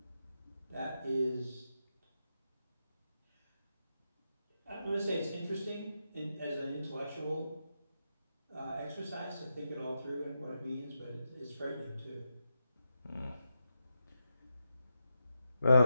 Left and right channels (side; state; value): both; inverted; correlation -0.86